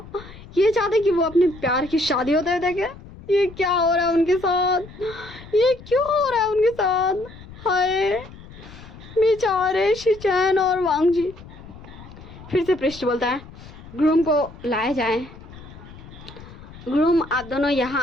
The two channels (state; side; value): noise; left; rumble, 18 dB below the sound